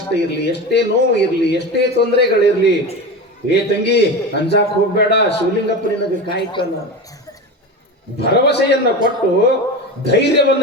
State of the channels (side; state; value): both; normal; correlation 0.25